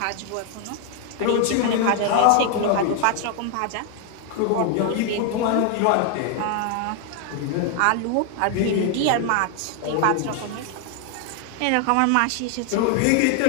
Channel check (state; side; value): different; both; correlation 0.00